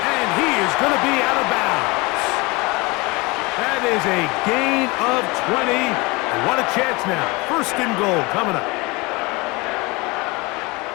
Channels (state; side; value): quieter; right; 25.2 dB